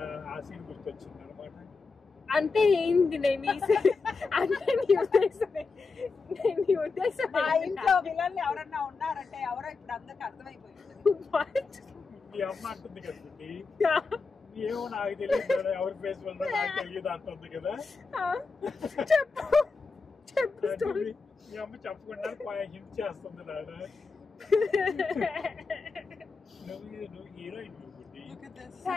ఆ సీన్ గుర్తొచ్చింది అనమాట. అంటే ఏంది నేను అంటే నీ ఉద్దేశం మా ఇంట్లో విలన్లు ఎవరన్నా ఉన్నారంటే ఎవరో ఇప్పుడు అందరికి అర్థమైపోయింది. మీ అమ్మ అంటుంది కదా ఏమో నాకు తెలియదు ఎవరి ఫేస్ వల్ల నాకు తెలియదు అంటుంది కదా. మీ అమ్మ చెప్పకుండా హింట్ చేస్తుంది నాన్న. నువ్వు హీరోయిన్.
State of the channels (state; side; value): quieter; right; 4.4 dB